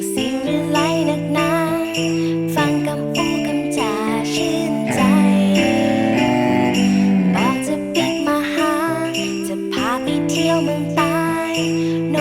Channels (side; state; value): both; identical; correlation 1.00